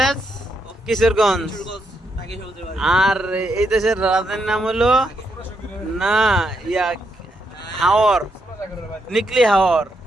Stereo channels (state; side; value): normal; both; correlation 0.79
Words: কিশোরগঞ্জ, আর এই দেশের রাজধানীর নাম হলো না হাওর, নিকলি হাওর।